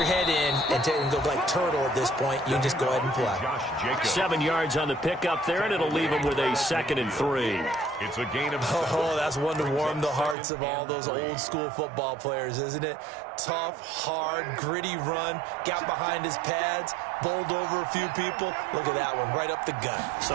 head in and go like turtle at this point. You just go ahead and play. 7 yards on the pickup there, and it'll leave him with a 2nd and 3. It's a gain of 7. Oh, that's one to warm the hearts of all those old-school football players, isn't it? Tough, hard, gritty run, got behind his pads, bowled over a few people. Look at that one, right up the gut.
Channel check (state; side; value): drops out; left; at 10.4 s